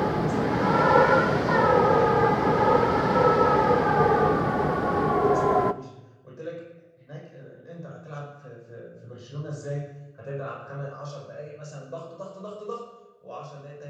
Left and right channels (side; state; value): both; identical; correlation 1.00